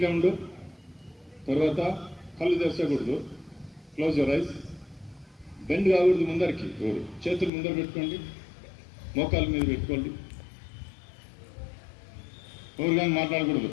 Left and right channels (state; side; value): drops out; right; at 7.5 s